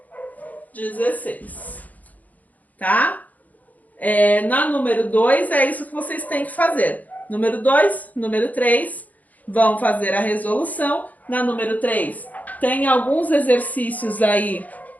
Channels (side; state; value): right; late; 0.078 ms